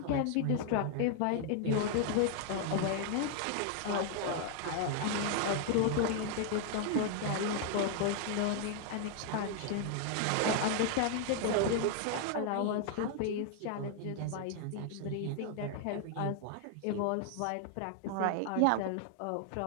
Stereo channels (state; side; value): different; both; correlation 0.00